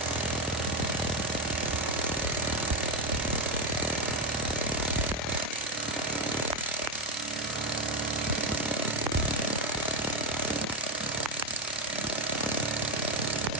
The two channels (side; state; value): both; normal; correlation 0.08